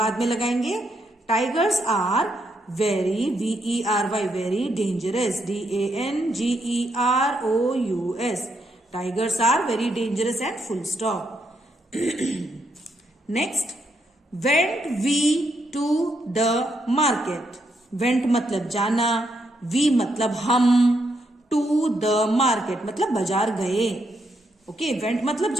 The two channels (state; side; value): normal; both; correlation 0.78